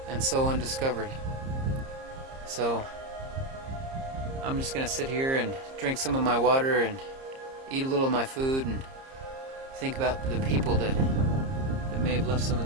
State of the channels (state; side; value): late; left; 30 ms